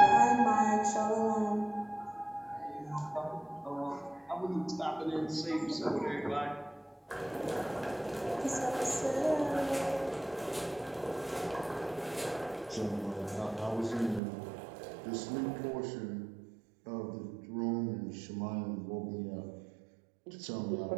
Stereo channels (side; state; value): left; drops out; at 14.2 s